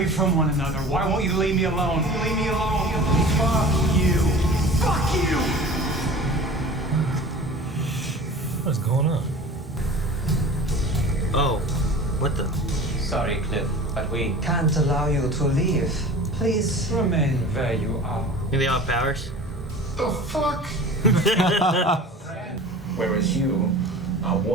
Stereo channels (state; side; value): normal; both; correlation 0.40